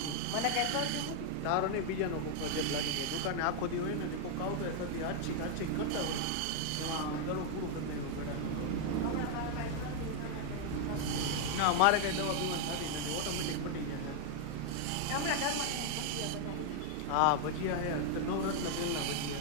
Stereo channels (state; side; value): different; both; correlation 0.00